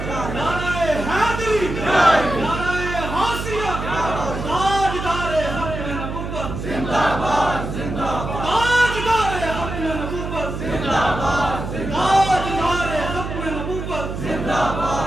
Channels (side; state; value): right; noise; hum, 6 dB below the sound